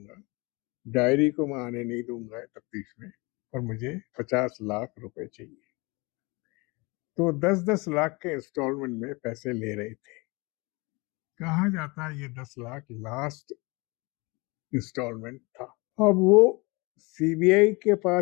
डायरी को मैं आने नहीं दूंगा तफ्तीश में, और मुझे 50 लाख रुपए चाहिए। तो 10-10 लाख के इंस्टॉलमेंट में पैसे ले रहे थे। कहा जाता है ये 10 लाख लास्ट इंस्टॉलमेंट था। अब वो सीबीआई के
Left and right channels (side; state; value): right; quieter; 26.6 dB